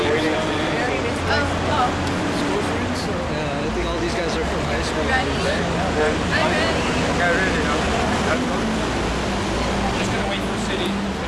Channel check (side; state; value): both; identical; correlation 1.00